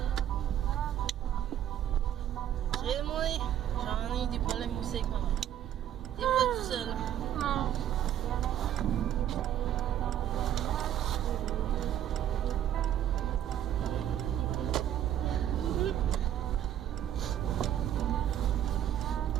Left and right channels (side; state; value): left; quieter; 10.9 dB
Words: Crée-moi, j'en ai des problèmes aussi avec ma mère. T'es pas tout seul. Non.